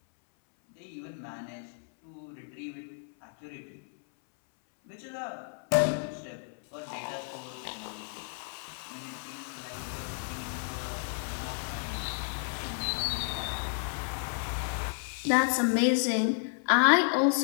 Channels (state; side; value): silent; right; 56 dB below the other